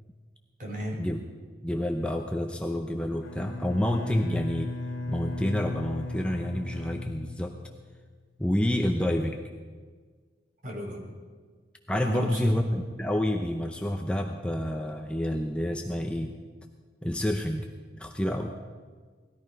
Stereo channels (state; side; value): normal; both; correlation 0.91